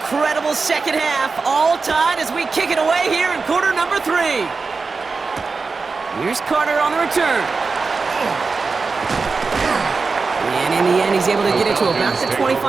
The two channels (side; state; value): left; quieter; 4.4 dB